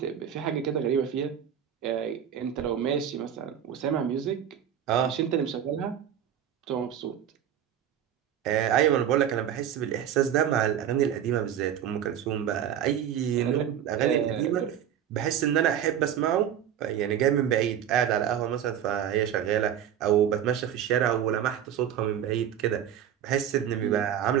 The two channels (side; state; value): left; quieter; 9.7 dB